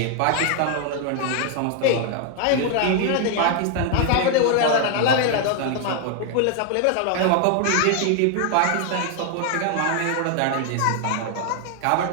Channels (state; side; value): different; both; correlation 0.00